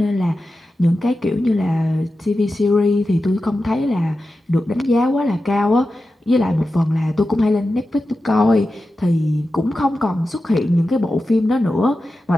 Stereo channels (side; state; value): both; normal; correlation 0.92